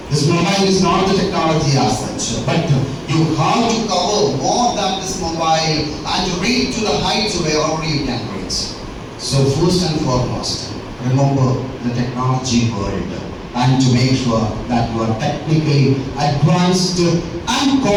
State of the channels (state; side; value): identical; both; correlation 1.00